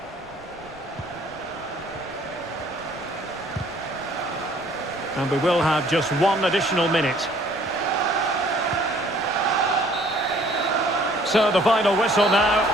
And we will have just one additional minute. So the final whistle now,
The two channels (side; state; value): right; noise; rumble, 27 dB below the sound